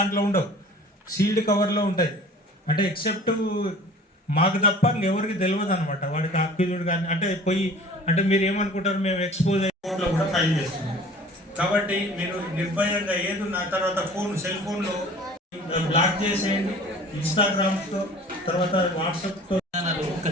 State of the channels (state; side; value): normal; both; correlation 0.46